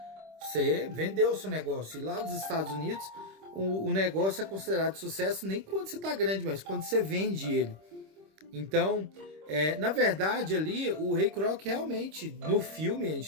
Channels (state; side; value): late; left; 26 ms